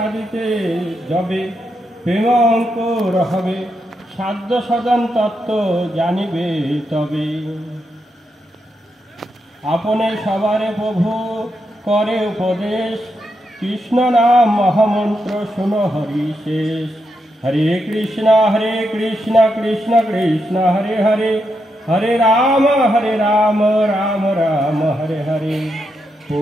যবে প্রেম অঙ্কুর হবে, সাধ্য সদন তত্ত্ব জানিবে তবে। আপনে সবারে প্রভু করে উপদেশ, কৃষ্ণ নাম মহামন্ত্র শুনো হরি শেষ। हरे कृष्णा कृष्ण कृष्ण हरे हरे, हरे राम राम राम हरे हरे।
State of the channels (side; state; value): both; normal; correlation 0.83